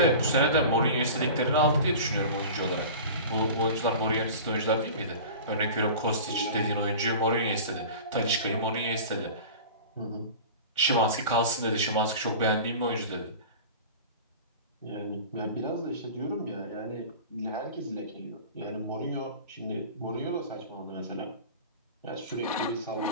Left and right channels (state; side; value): inverted; both; correlation -0.36